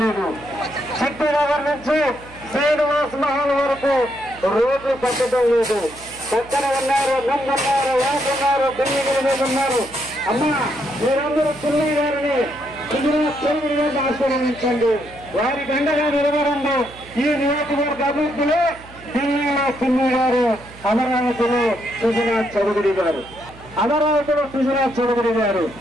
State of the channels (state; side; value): noise; right; hum, 20 dB below the sound